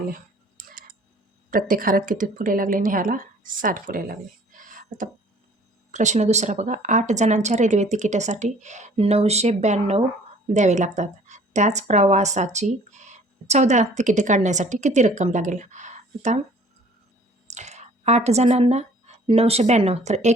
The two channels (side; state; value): both; normal; correlation 0.53